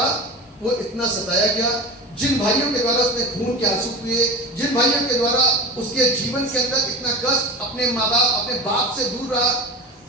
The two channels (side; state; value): both; normal; correlation 0.30